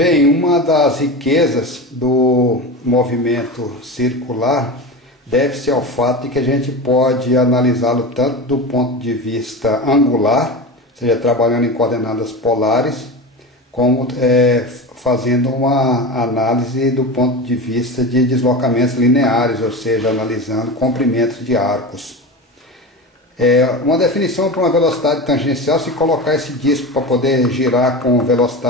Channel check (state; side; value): normal; both; correlation 0.26